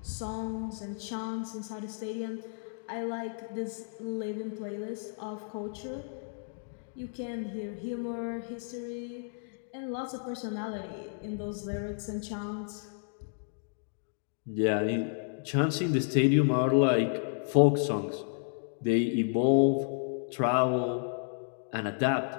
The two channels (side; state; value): right; silent; digital silence